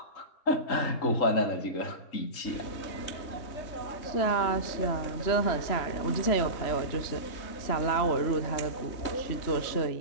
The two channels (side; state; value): right; late; 3.1 ms